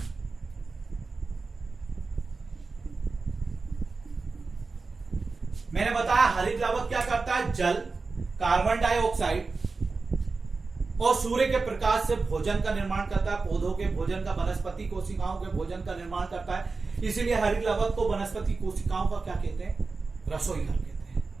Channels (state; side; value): quieter; left; 4.1 dB